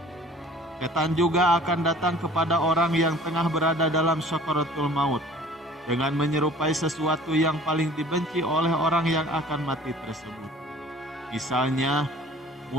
Setan juga akan datang kepada orang yang tengah berada dalam sakaratul maut dengan menyerupai sesuatu yang paling dibenci oleh orang yang akan mati tersebut. Misalnya,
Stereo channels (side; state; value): both; normal; correlation 0.49